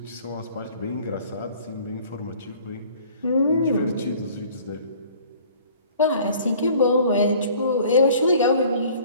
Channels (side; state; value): both; inverted; correlation -0.52